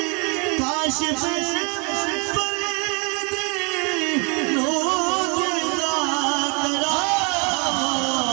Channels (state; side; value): quieter; left; 31.5 dB